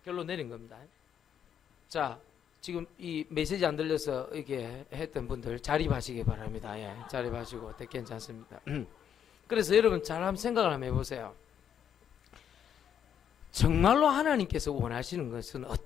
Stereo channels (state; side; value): quieter; right; 8.8 dB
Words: 결론 내린 겁니다. 자, 지금 이 메시지 안 들려서 이렇게 했던 분들 자립하시기 바랍니다. 예, 자립하시고 괜찮습니다. 그래서 여러분 잘 한번 생각을 한번 해보세요. 정말로 하나님께서 원하시는 것은